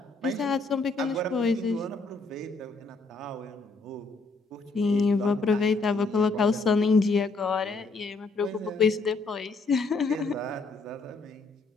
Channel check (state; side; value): quieter; right; 3.7 dB